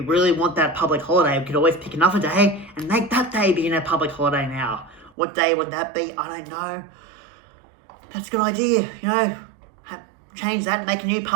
want that public holiday, we could always pick another day and make that day be a public holiday now. What day would that be? I don't know. That's a good idea, you know. Change that and make a new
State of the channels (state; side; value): drops out; left; at 5.1 s